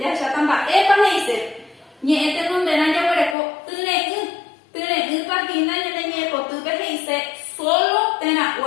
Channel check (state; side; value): drops out; right; at 3.4 s